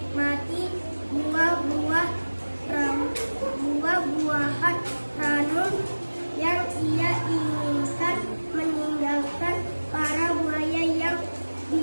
buah-buahan ranum yang ia inginkan, meninggalkan para buaya yang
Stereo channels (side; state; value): both; inverted; correlation -1.00